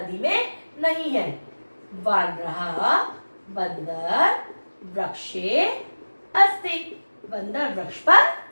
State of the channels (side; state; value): both; inverted; correlation -1.00